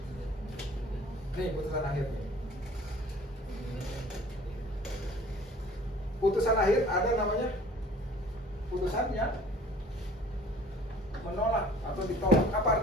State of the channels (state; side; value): normal; both; correlation 0.50